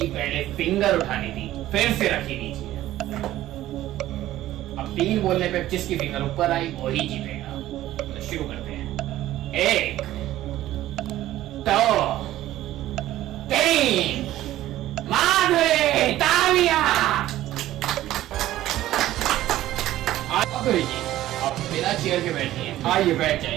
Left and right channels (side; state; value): left; quieter; 14.4 dB